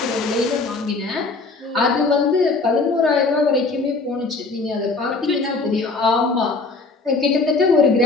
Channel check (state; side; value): quieter; right; 3.8 dB